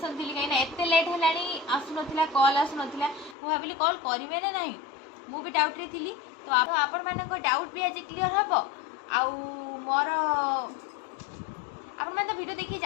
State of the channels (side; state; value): right; drops out; at 3.4 s